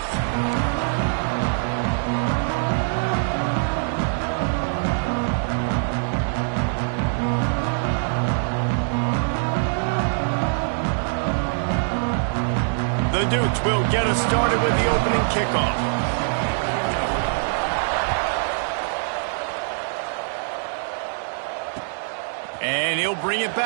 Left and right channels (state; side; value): silent; left; digital silence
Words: The Dukes will get us started with the opening kickoff. And he'll bring it